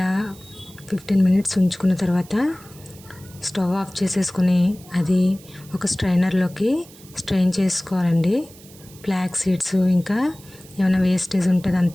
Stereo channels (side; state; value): right; noise; hiss, 22 dB below the sound